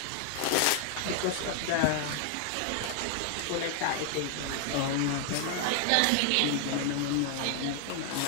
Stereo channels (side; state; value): both; different; correlation 0.00